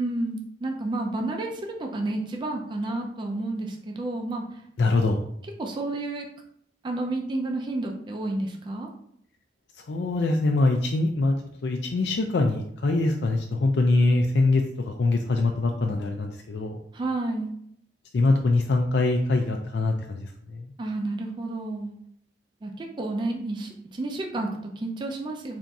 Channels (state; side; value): normal; both; correlation 0.81